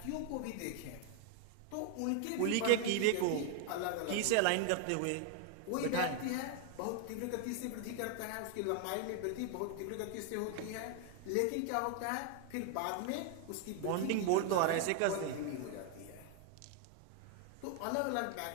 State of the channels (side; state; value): both; different; correlation 0.00